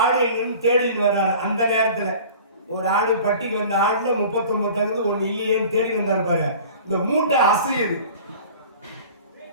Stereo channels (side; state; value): both; inverted; correlation -0.43